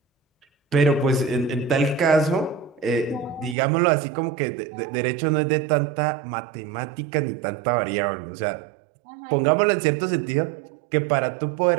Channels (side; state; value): left; drops out; at 3.6 s